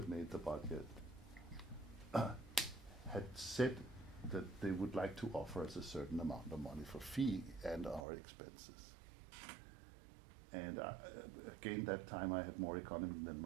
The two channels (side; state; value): left; drops out; at 8.0 s